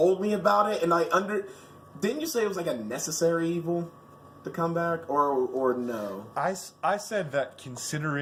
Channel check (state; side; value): identical; both; correlation 1.00